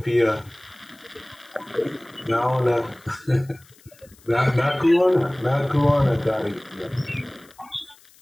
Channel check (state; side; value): noise; left; hiss, 27 dB below the sound